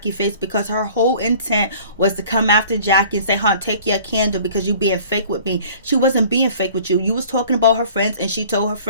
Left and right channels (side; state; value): both; inverted; correlation -0.49